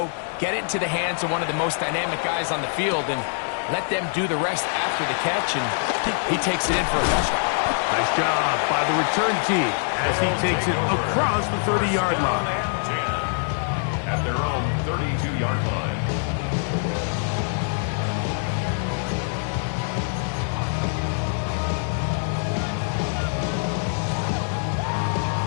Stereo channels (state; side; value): silent; right; 62 dB below the other